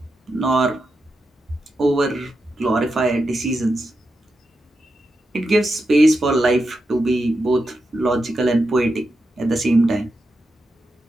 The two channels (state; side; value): normal; both; correlation 0.88